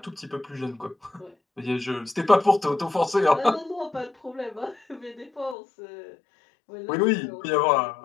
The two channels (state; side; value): drops out; right; at 5.6 s